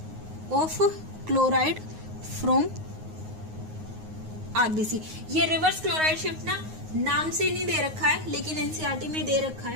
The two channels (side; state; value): left; late; 9.5 ms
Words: of chloride from RBC. ये रिवर्स क्लोराइड शिफ्ट ना नाम से नहीं दे रखा है, लेकिन एनसीईआरटी में दे रखा